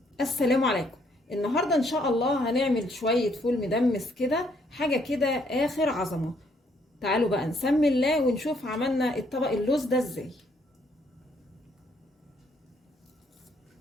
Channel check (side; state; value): both; normal; correlation 0.69